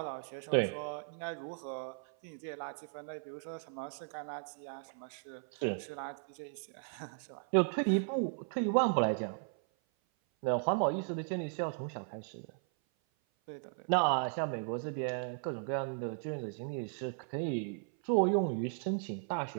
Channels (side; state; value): left; silent; 54 dB below the other